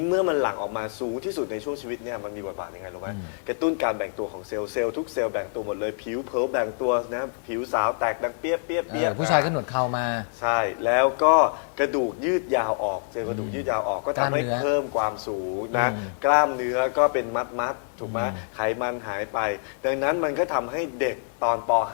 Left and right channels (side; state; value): right; silent; digital silence